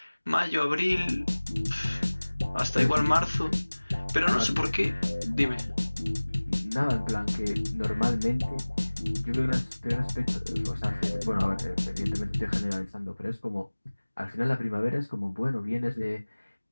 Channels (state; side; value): inverted; both; correlation -1.00